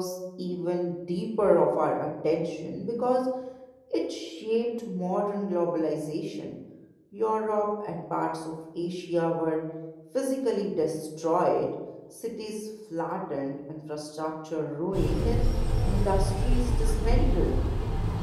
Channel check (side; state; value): both; identical; correlation 1.00